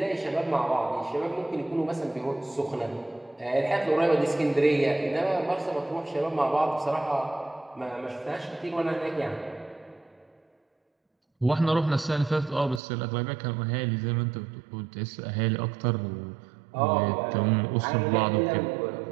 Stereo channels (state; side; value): drops out; left; at 12.8 s